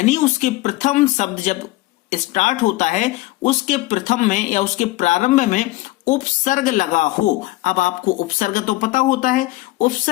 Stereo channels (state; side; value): quieter; right; 19.1 dB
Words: उसके प्रथम शब्द जब स्टार्ट होता है, उसके प्रथम में या उसके प्रारंभ में उपसर्ग लगा हो। अब आपको उपसर्ग तो पता होता है,